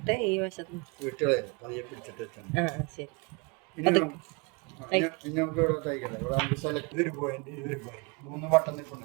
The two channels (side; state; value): left; quieter; 29.5 dB